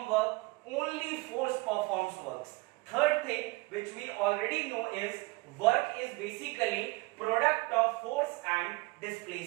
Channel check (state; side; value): quieter; left; 24.6 dB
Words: work, only force performs works. Third thing which we already know is, work is basically product of force and